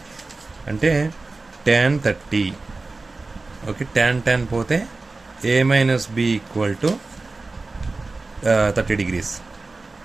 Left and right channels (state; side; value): quieter; left; 3.5 dB